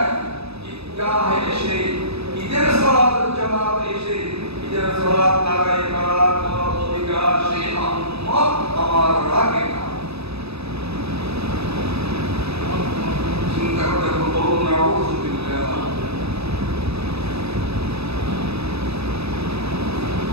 ঈদগাহে এসে ঈদের সালাতের জামাতে এসে ঈদের সালাত আদায় করার কোনো অধিকার সে উম্মত আমার রাখে না। চিন্তা করতে বলুন নাউযুবিল্লাহ।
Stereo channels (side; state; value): left; late; 0.79 ms